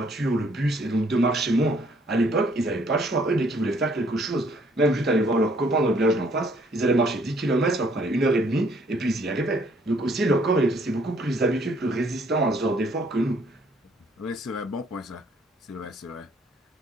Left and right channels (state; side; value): normal; both; correlation 0.63